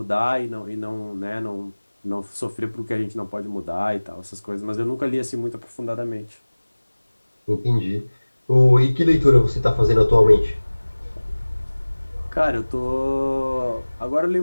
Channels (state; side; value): inverted; both; correlation -1.00